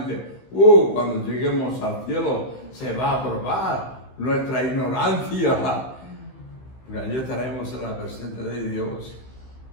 Cuando lleguemos al cielo se va a probar nuestra ignorancia. Porque allí estaremos en la presencia de Dios,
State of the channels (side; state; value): right; late; 15 ms